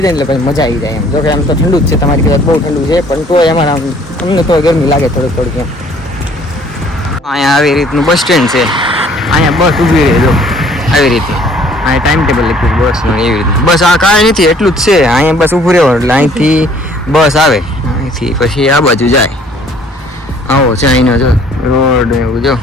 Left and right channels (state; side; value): normal; both; correlation 0.57